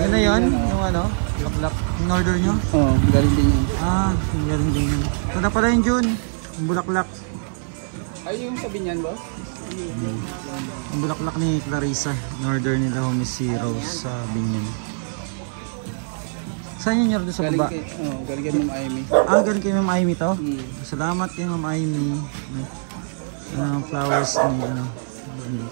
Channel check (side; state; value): left; silent; 64 dB below the other